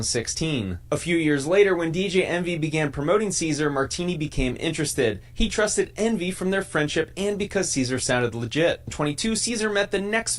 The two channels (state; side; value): identical; both; correlation 1.00